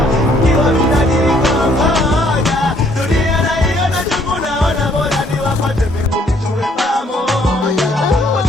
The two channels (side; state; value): both; normal; correlation 0.65